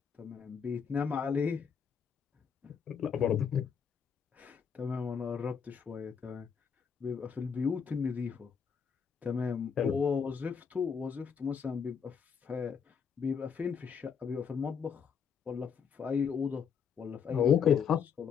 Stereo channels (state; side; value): quieter; right; 6.8 dB